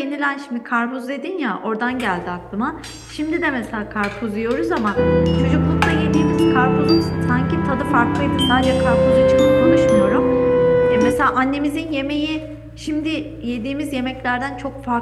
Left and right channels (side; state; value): both; identical; correlation 1.00